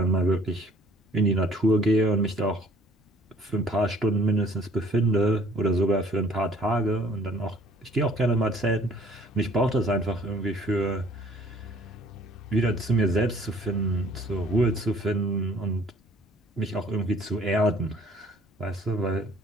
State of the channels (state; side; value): normal; both; correlation 0.56